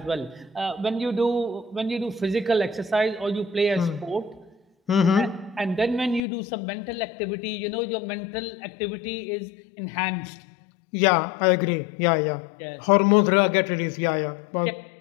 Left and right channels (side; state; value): right; drops out; at 6.2 s